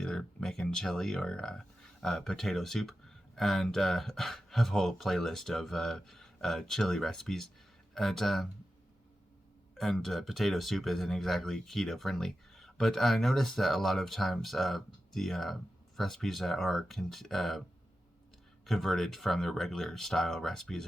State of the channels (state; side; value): normal; both; correlation 0.92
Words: making chili or potato soup, and have a whole playlist of chili recipes, and potato soup isn't exactly keto-friendly, but I noticed that a lot of times the recipes that are converted from the regular style recipes